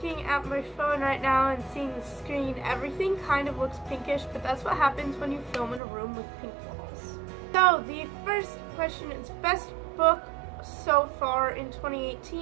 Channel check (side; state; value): left; drops out; at 5.8 s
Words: at my phone right now and seeing the screen, everything kind of looks pinkish, but that's what happens when you film in a room with pink walls. So, the first question is best book so far in